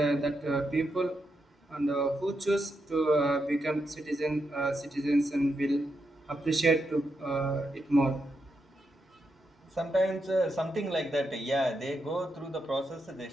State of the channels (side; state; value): both; normal; correlation 0.84